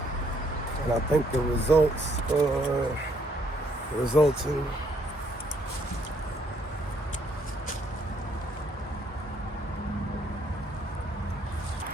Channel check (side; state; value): both; normal; correlation 0.69